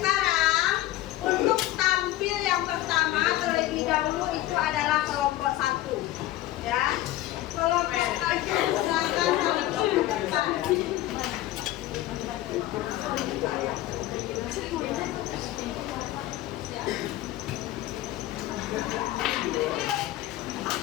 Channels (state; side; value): quieter; right; 15.3 dB